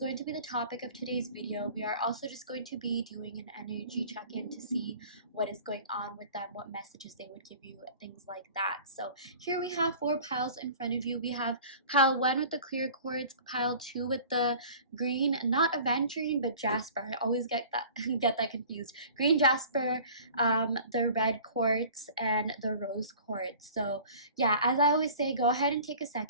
to be the topic of today's video. We are also just going to be doing an energy check-in to see what is going on with them, what messages they would give you, things like that. So here we have 4 piles in front of you. We have pile 1 with the clear quartz, pile 2 with the green, not aventurine, but Jasper. I always get that confused. Green Jasper, the red quartz, and the rose quartz. So yeah, as I always say, go ahead and take a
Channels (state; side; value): inverted; both; correlation -0.45